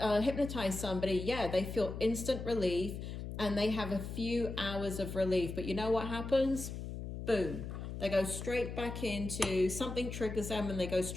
hypnotize somebody, yeah, they feel instant relief and they have a few hours of relief. But you know what happens? Boom. They go straight back into something, triggers them, and they go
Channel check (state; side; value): noise; left; hum, 7 dB below the sound